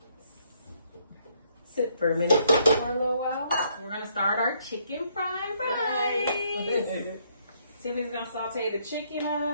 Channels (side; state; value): both; inverted; correlation -0.70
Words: sit for a minute. For a little while. We're gonna start our chicken fried rice. Tiffany's gonna saute the chicken